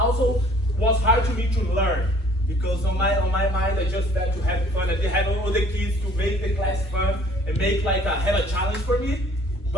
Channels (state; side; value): normal; both; correlation 0.56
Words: was hard to me to learn. Because on my mind, I just had to have fun. I didn't have all the kids to make the class fun and make have a challenge for me.